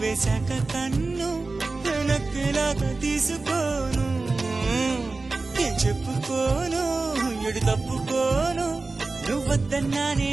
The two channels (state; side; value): quieter; left; 3.6 dB